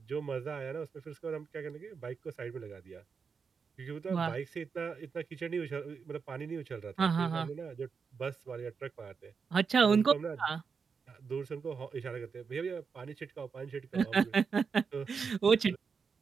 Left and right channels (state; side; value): quieter; left; 5.7 dB